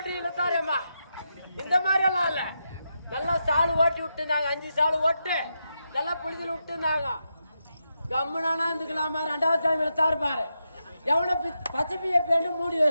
இழுத்தாரேம்மா. இந்த மாதிரி எல்லாம் இல்ல. நல்லா சாலு ஓட்டி விட்டுருந்தாங்க. 5 சாலு ஓட்டு நல்லா புளிதில் விட்டுருந்தாங்க. கம்முனானா இருந்துக்கலாமா. 2வது டைம் இழுத்தாரு பாரு. எவனை பச்சைப்பிய பேண்டு மூடி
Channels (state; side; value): inverted; both; correlation -0.86